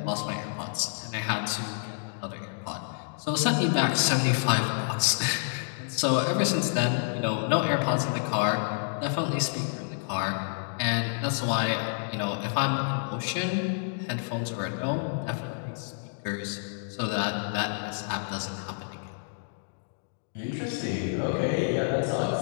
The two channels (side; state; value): right; silent; digital silence